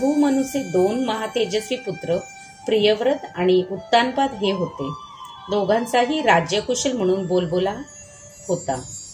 मनूचे 2 महातेजस्वी पुत्र प्रियव्रत आणि उत्तानपाद हे होते। दोघांचाही राज्यकुशल म्हणून बोलबोला होता।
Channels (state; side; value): identical; both; correlation 1.00